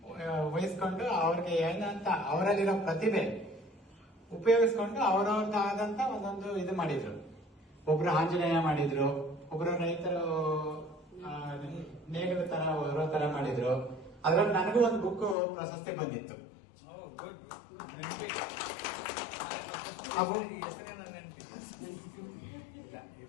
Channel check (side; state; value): right; drops out; at 15.4 s